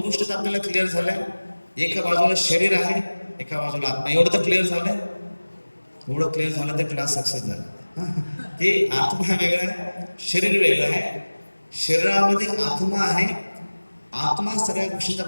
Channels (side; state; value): both; inverted; correlation -1.00